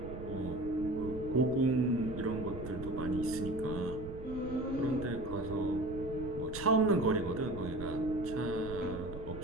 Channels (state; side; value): noise; right; rumble, 11 dB below the sound